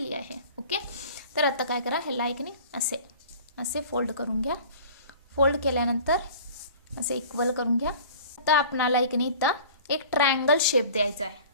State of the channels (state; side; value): inverted; both; correlation -0.44